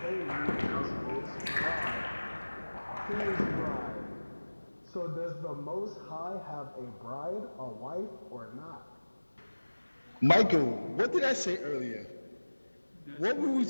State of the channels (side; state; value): both; inverted; correlation -1.00